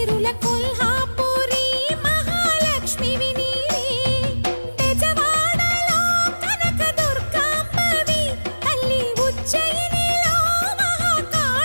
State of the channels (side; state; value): both; inverted; correlation -1.00